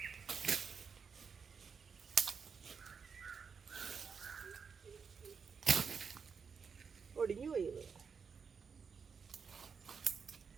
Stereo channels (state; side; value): quieter; left; 6.0 dB